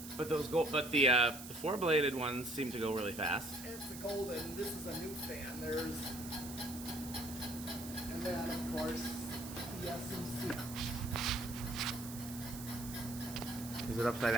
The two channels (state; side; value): noise; right; hiss, 12 dB below the sound